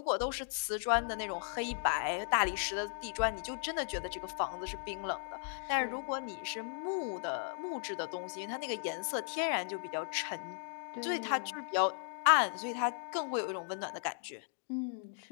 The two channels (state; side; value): silent; right; digital silence